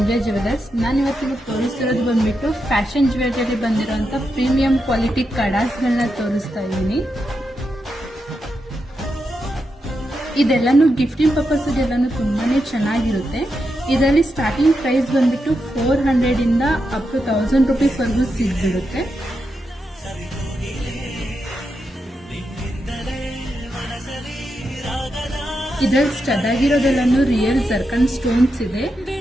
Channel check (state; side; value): normal; both; correlation 0.86